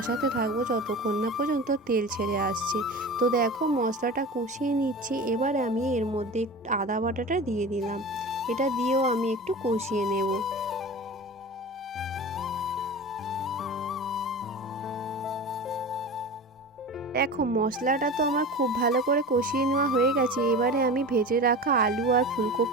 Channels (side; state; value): both; normal; correlation 0.32